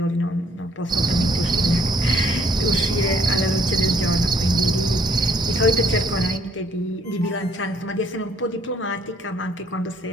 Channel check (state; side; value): normal; both; correlation 0.64